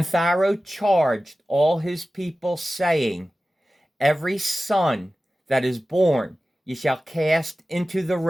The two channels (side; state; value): both; normal; correlation 0.95